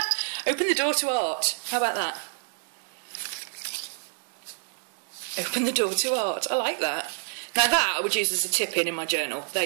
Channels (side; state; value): left; silent; digital silence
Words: Open the door to art. How about that? Open the door to art. I like that. Now that I would use as a tip in my journal. There